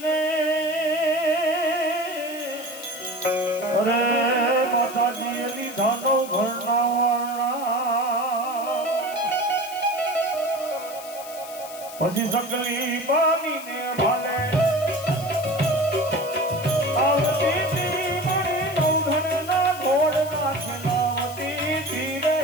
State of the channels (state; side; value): noise; left; hiss, 15 dB below the sound